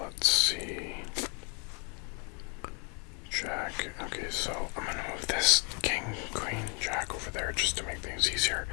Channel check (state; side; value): quieter; right; 35.1 dB